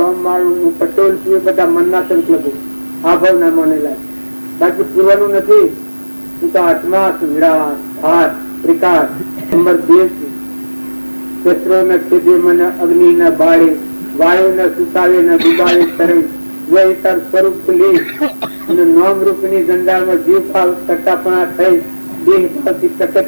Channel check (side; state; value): both; inverted; correlation -1.00